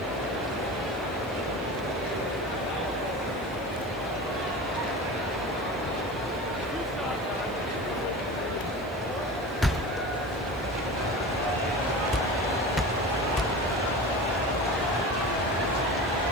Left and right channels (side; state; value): right; noise; hiss, 24 dB below the sound